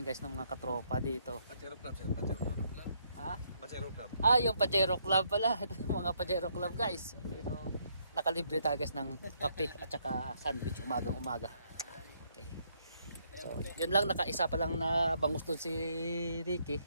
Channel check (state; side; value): inverted; both; correlation -0.72